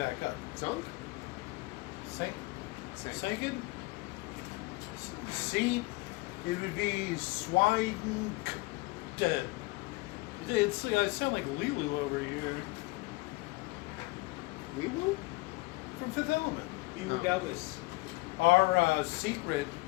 up. Sunk? Sank? Sank. Sanken? See? It would be swine dead. I sound like Lilu over here. Lilu? From Fifth Element. Emu Dallas. Our secret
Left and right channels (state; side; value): quieter; right; 23.5 dB